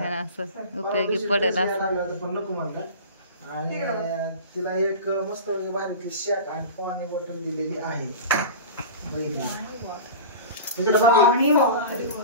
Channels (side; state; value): both; inverted; correlation -0.33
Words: असं उपयोगी पडेल असं. पण नको म्हणतात. आणि तिला एक मस्त बाहेरची शॅक आणि पाणी बॉटल दिलेली आहे.